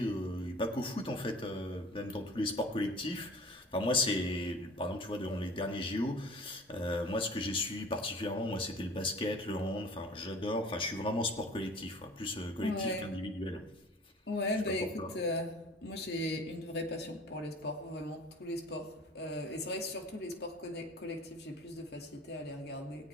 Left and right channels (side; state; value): both; normal; correlation 0.45